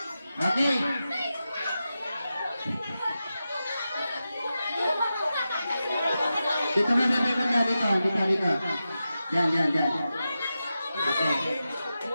Okay. Dito na natin banda dito. Dito, dito. Yan, yan, yan. Okay.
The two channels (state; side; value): inverted; both; correlation -0.91